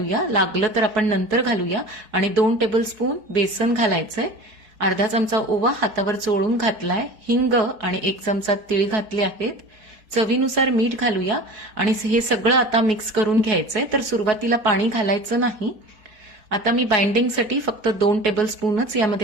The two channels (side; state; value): left; late; 4.4 ms